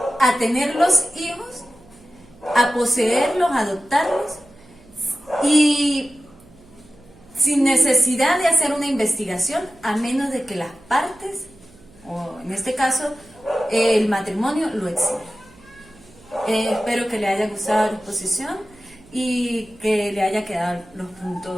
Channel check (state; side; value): noise; right; hum, 26 dB below the sound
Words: a tener los hijos, a poseerlos, a adoptarlos y sin necesidad de hacer una investigación, a menos de que las partes, o en este caso el matrimonio, lo exija. Espero que le haya gustado la exposición y que le haya quedado los